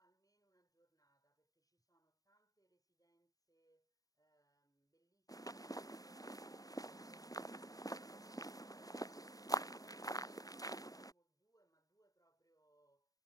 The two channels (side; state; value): right; late; 0.17 ms